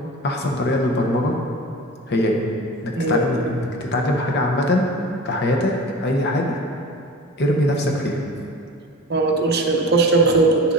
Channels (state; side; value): normal; both; correlation 0.35